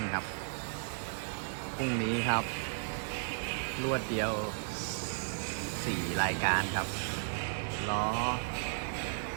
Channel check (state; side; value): silent; left; digital silence